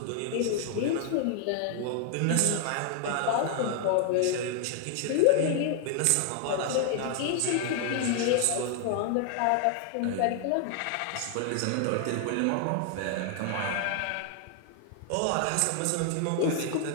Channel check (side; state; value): both; different; correlation 0.00